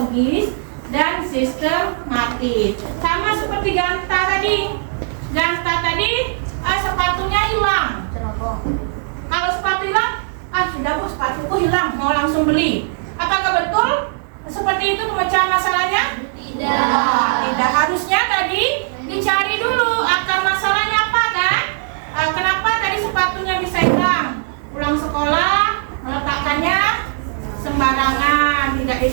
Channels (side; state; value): left; silent; digital silence